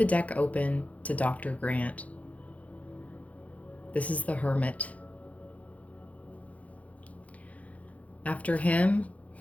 deck open to Dr. Grant. This is the Hermit. After him,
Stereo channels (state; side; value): late; right; 0.068 ms